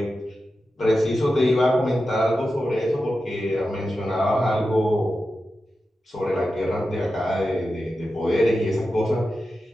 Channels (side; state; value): both; normal; correlation 0.91